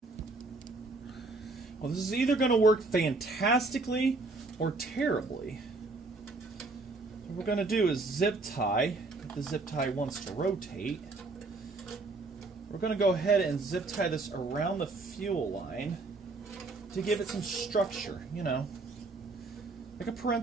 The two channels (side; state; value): left; quieter; 3.5 dB